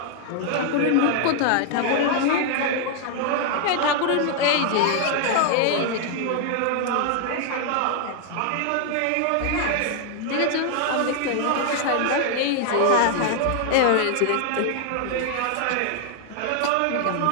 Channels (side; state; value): both; different; correlation 0.00